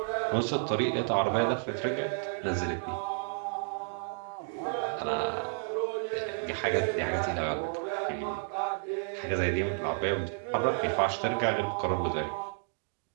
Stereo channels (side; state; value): left; silent; digital silence